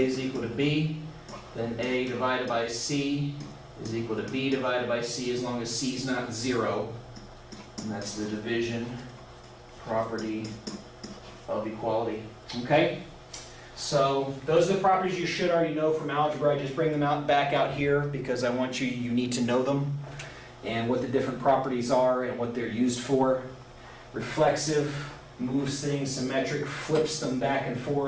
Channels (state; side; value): identical; both; correlation 1.00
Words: is equal to B, then A divided by C is equal to B divided by C as long as C is not 0. And that's the division property of equality. Okay? So those are the properties you should already know from algebra. I just bring them back out here because I want you need to know them and what the different properties are and what they're used for. Reflexive moves things, symmetric flips them back and